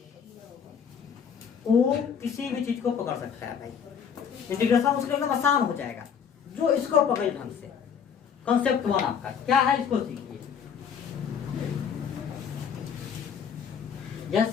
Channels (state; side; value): quieter; right; 7.4 dB